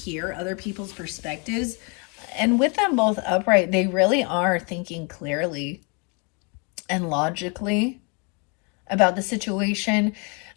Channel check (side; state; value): right; quieter; 33.9 dB